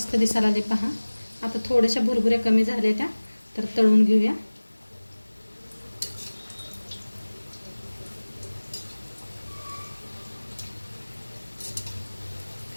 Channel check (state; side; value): inverted; both; correlation -1.00